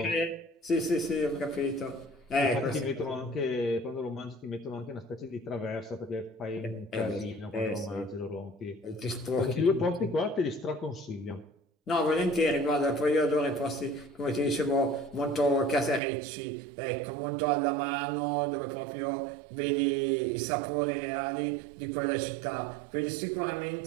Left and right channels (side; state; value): left; drops out; at 16.0 s